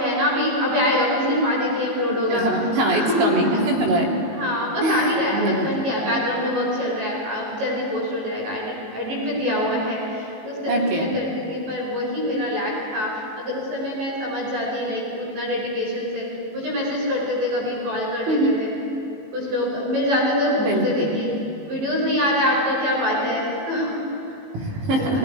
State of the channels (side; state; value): left; late; 19 ms